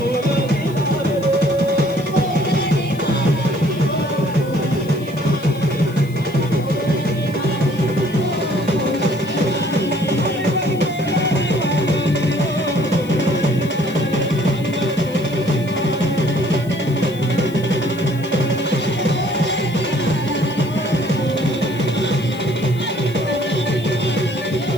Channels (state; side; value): noise; left; hiss, 22 dB below the sound